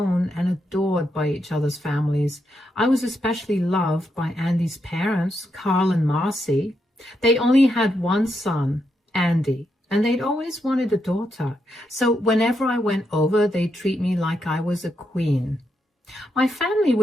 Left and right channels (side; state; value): both; normal; correlation 0.82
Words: and adored by each other's families. I was especially loved by Andy's parents, Carl and Marcy. They only had one son, Andy, and they'd always wanted a daughter. So whenever I went over, they'd treat me like I was a queen. My family